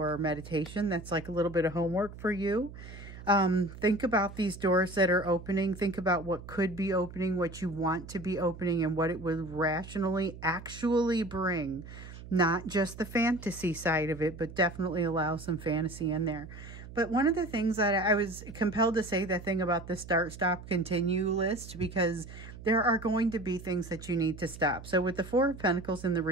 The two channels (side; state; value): right; noise; hum, 14 dB below the sound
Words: meditation. That's like a little bit of homework for you. Think about these doors that are opening. Think about what could be opening, what you want to be opening, and what it would rationally actually bring. Not just the fantasy side of it, but definitely allow some fantasy in there. But one of the things that I was compelled to say that thing about the start, stop, continue list, because there are going to be things that you need to stop. So with the Four of Pentacles in the